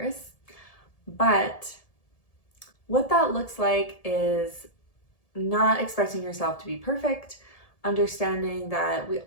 But what that looks like is not expecting yourself to be perfect, understanding that we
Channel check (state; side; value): late; right; 1.7 ms